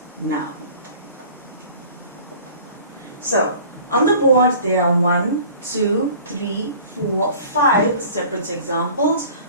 now. So, on the board there are 1, 2, 3, 4, 5 separate examples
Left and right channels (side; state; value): both; inverted; correlation -0.46